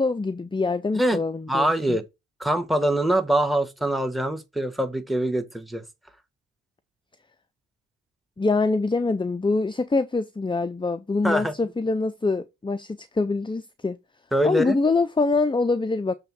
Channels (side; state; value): both; normal; correlation 0.81